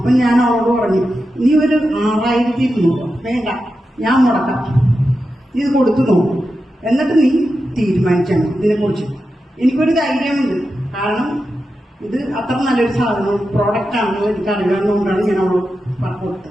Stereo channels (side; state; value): both; normal; correlation 0.90